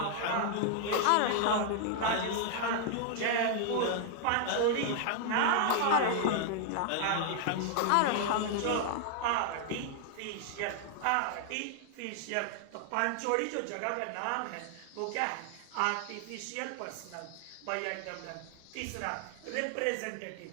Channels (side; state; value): both; different; correlation 0.00